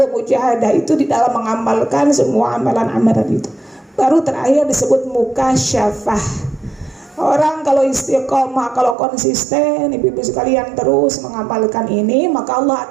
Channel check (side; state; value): left; drops out; at 9.0 s